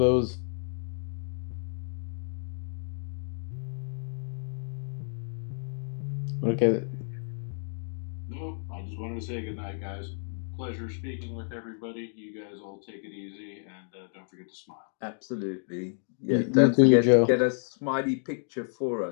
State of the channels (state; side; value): silent; right; digital silence